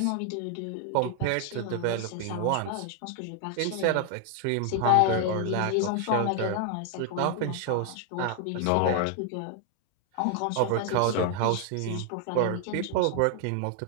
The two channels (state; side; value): different; both; correlation 0.00